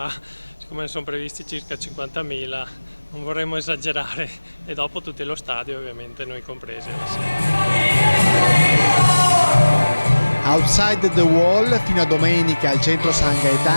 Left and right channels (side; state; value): both; inverted; correlation -1.00